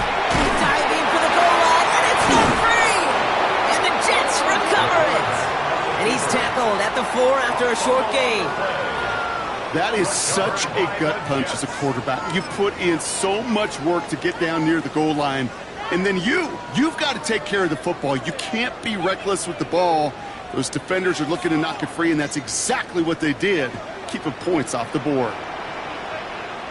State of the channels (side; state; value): both; identical; correlation 1.00